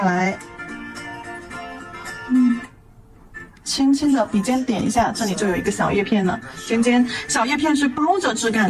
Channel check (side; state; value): both; identical; correlation 1.00